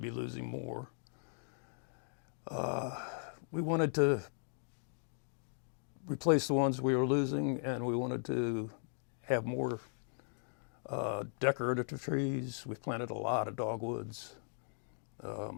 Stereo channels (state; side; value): silent; right; digital silence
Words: losing more. We wanted to replace the ones we were losing, and we wanted to have more decorative trees. We've planted a lot of dogwoods,